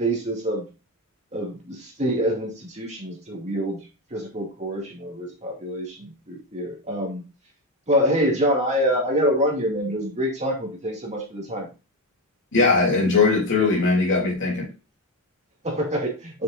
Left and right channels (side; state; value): both; normal; correlation 0.12